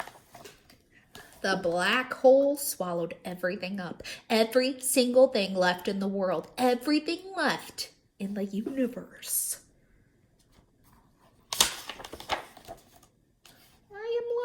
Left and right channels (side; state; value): both; identical; correlation 1.00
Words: The black hole swallowed everything up. Every single thing left in the world. Everything left in the universe. I